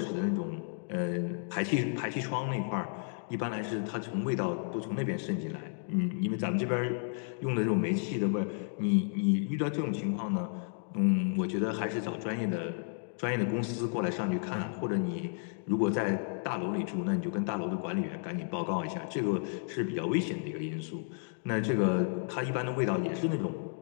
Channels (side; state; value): right; silent; 56 dB below the other